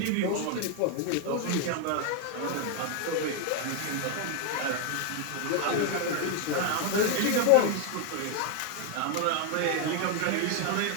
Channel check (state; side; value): different; both; correlation 0.01